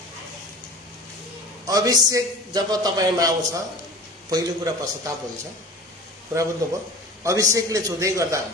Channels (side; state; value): both; normal; correlation 0.38